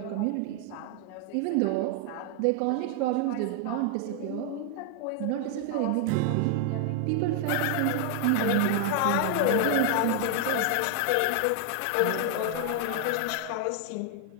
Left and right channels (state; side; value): different; both; correlation 0.00